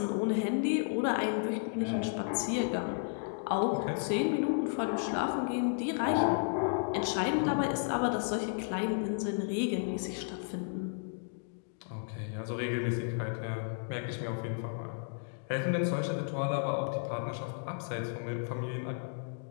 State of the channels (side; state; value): right; silent; digital silence